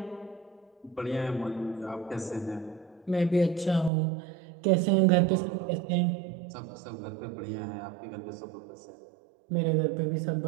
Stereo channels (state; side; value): drops out; left; at 3.9 s